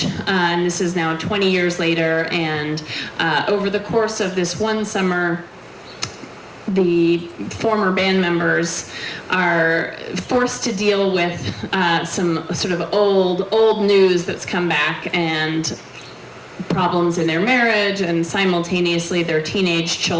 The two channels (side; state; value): both; identical; correlation 1.00